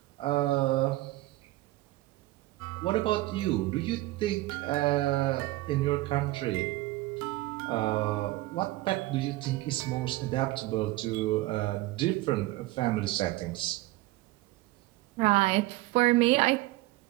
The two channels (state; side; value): quieter; left; 18.5 dB